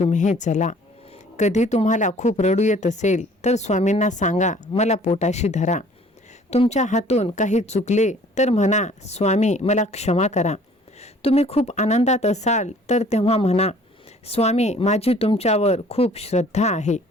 चला. कधी तुम्हाला खूप रडू येत असेल तर स्वामींना सांगा, मला पोटाशी धरा. तुमच्या हातून काही चुकले तर म्हणा, स्वामी मला क्षमा करा. तुम्ही खूप आनंदात असाल तर तेव्हा म्हणा, स्वामी माझी तुमच्यावर खूप श्रद्धा आहे.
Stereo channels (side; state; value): both; normal; correlation 0.54